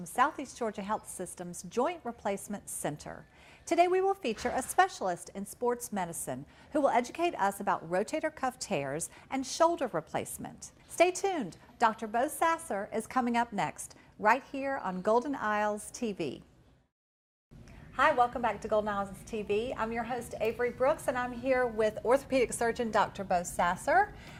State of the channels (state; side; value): identical; both; correlation 1.00